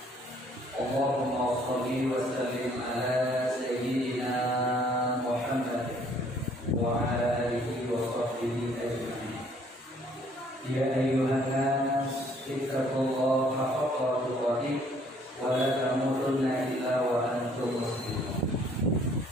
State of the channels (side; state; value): both; normal; correlation 0.61